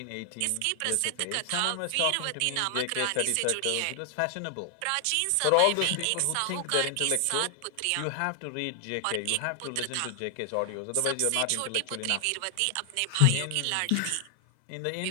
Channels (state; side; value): different; both; correlation 0.00